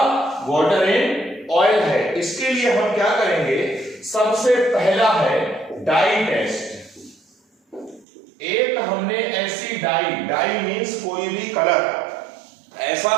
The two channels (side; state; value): left; drops out; at 8.1 s